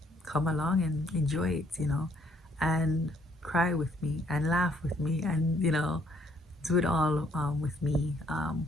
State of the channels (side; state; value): both; normal; correlation 0.66